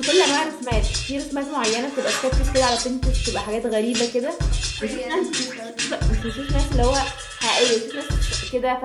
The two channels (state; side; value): identical; both; correlation 1.00